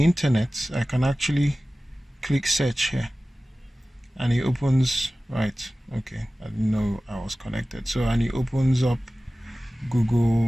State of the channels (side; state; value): both; normal; correlation 0.96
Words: internet, I can actually click search here and it opens, right? Okay, I didn't know I was connected. So, and it opens up